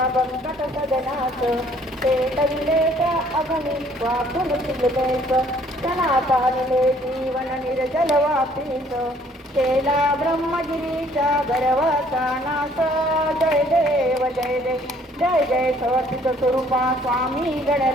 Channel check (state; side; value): normal; both; correlation 0.60